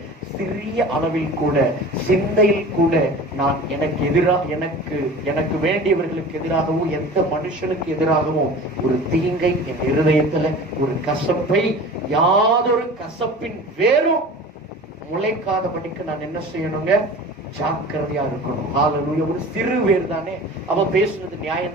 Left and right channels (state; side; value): normal; both; correlation 0.39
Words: சிறிய அளவில் கூட, சிந்தையில் கூட நான் எனக்கு வேண்டியவர்களுக்கு எதிராகவும் எந்த மனுஷனுக்கு எதிராகவும் ஒரு தீங்கை என் இருதயத்துல, ஒரு கசப்பை, யாதொரு கசப்பின் வேறும் முளைக்காதபடிக்கு நான் என்ன செய்யணுங்க? ஜாக்கிரதையா இருக்கணும். ஹல்லேலூயா. ஒரு சிறு வேர் தானே, அவன் பேசுறது நியாயம்